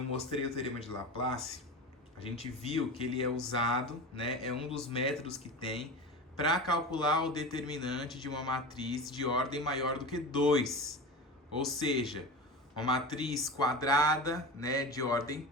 mostrei o teorema de Laplace, a gente viu que ele é usado, né, é um dos métodos que tem para calcular o determinante de uma matriz de ordem maior do que 2. Ou seja, uma matriz quadrada, né, de ordem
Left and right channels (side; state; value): both; normal; correlation 0.28